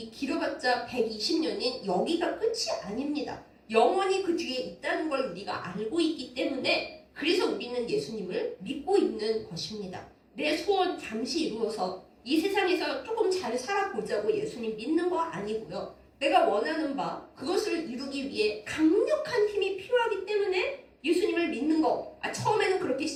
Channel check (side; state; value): both; identical; correlation 1.00